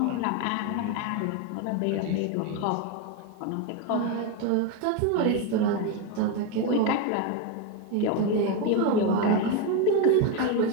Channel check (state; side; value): different; both; correlation 0.03